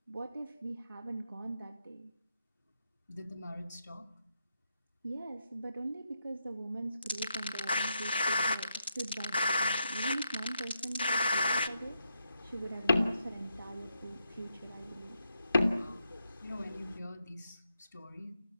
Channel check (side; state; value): both; inverted; correlation -0.83